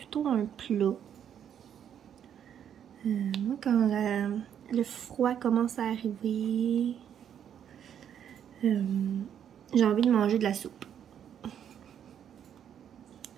un plat. Moi, quand le froid commence à arriver, j'ai envie de manger de la soupe.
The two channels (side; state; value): left; quieter; 9.1 dB